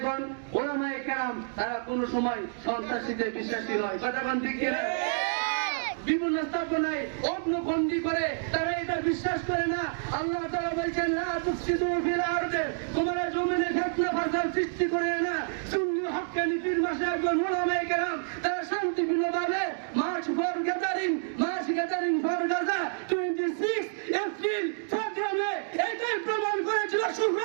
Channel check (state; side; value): silent; left; digital silence